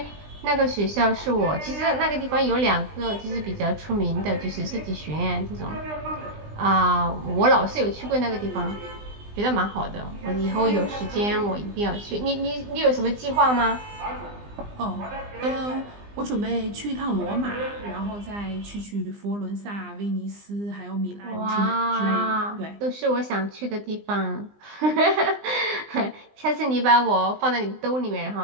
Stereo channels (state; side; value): late; left; 20 ms